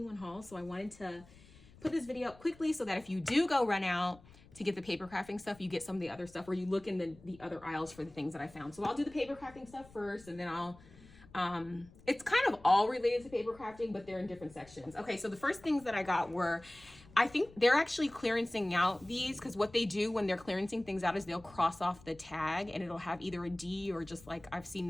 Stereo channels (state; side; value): noise; left; rumble, 23 dB below the sound